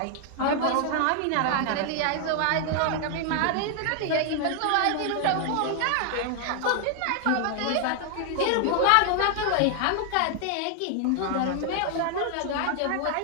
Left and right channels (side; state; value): both; different; correlation 0.00